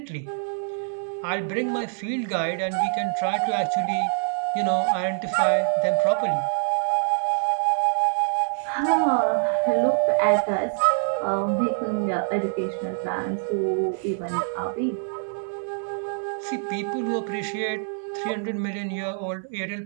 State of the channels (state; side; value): silent; left; 59 dB below the other